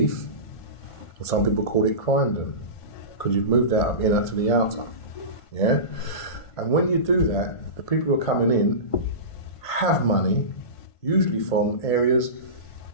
and some people call it Croydon, because you've moved out of inner to the outer. Yeah? And when you do that, the people who are coming in have money, usually from areas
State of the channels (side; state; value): right; late; 1.5 ms